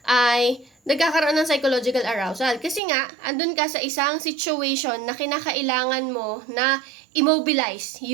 ay nagkakaroon ng psychological arousal. Kasi nga, andun ka sa isang situation na kinakailangan mo na immobilize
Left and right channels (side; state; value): left; drops out; at 2.8 s